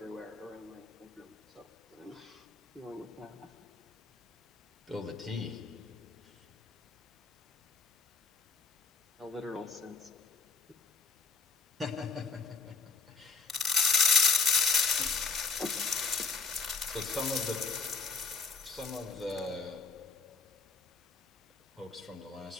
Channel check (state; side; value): quieter; right; 5.0 dB